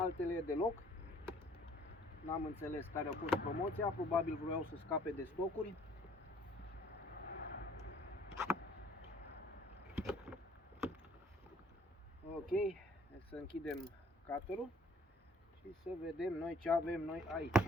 deloc. N-am înțeles care a fost promoția, probabil vreau să scape de stocuri. Ok, să închidem cutterul și să vedem noi ce avem noi aici.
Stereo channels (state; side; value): normal; both; correlation 0.58